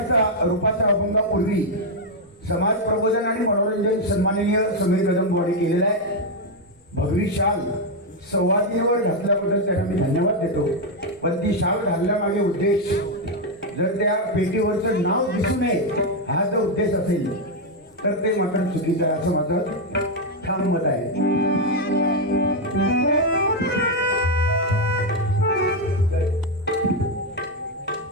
रूपाचा अभंगापूर्वी समाज प्रबोधन आणि मनोरंजन सन्माननीय समीर कदमवाडी केलेला आहे. भगवी शाल संवादीवर घातल्याबद्दल त्यांना मी धन्यवाद देतो. पण ती शाल घालण्यामागे उद्देश, जर त्या पेटीवरचं नाव दिसू नये हा जर उद्देश असेल तर ते मात्र चुकीचं आहे असं माझं ठाम मत आहे.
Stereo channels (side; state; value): both; normal; correlation 0.03